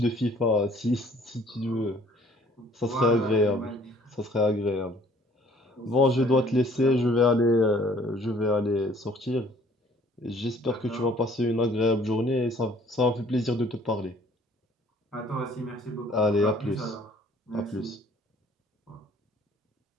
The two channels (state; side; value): normal; both; correlation 0.57